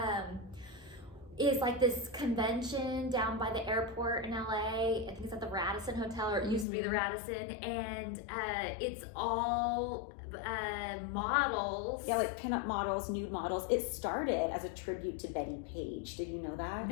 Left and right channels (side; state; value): right; drops out; at 6.7 s